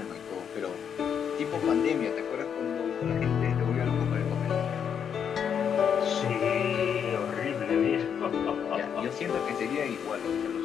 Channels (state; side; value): quieter; right; 7.8 dB